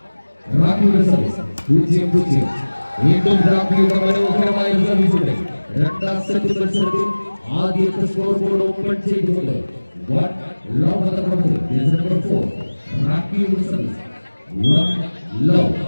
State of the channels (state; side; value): inverted; both; correlation -1.00